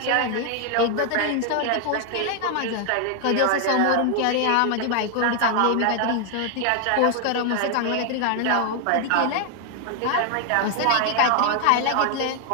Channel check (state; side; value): different; both; correlation 0.00